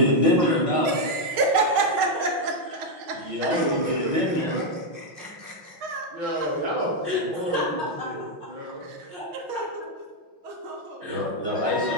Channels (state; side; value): late; left; 6.3 ms